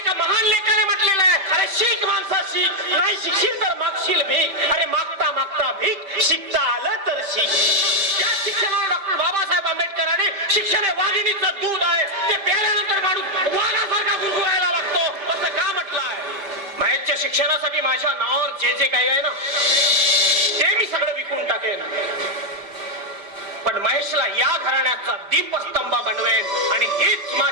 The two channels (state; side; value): late; left; 5.1 ms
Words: महान लेखाने म्हटलेलं आहे, अरे शिक माणसा शिक, नाही शिकशील तर मागशील भीक, अरे मागता मागता भीक, शिकता आलं तर शिक. त्या शिक्षणाला डॉक्टर बाबासाहेब आंबेडकरांनी शिक्षण हे वाघिणीचं दूध आहे, ते प्यायल्यानंतर माणूस वाघासारखा गुरगुरायला लागतो असं का म्हटलं आहे. महेशच्या शिक्षणासाठी माझ्या नावावर जे जे काही आहे ना ते मी सगळं विकून टाकेन, पण महेशला या घराण्याचा दीपस्तंभ बनवेन आणि हीच